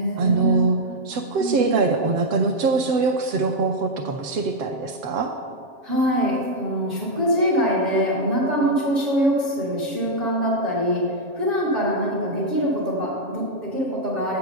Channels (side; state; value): left; late; 7.4 ms